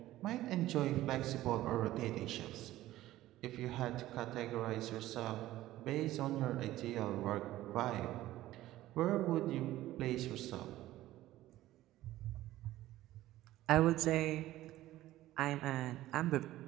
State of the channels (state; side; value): quieter; left; 15.3 dB